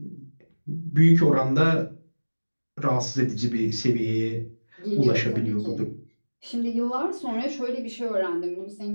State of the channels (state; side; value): inverted; both; correlation -1.00